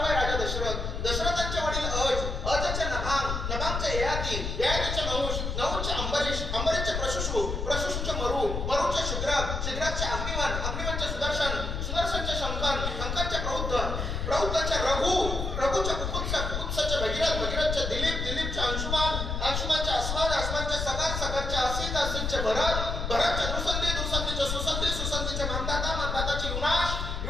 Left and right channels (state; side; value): noise; left; rumble, 3 dB below the sound